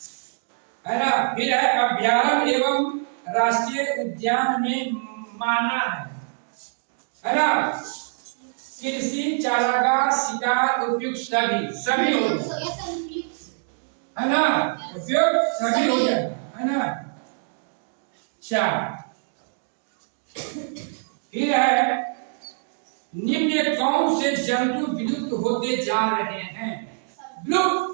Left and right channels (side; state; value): left; silent; digital silence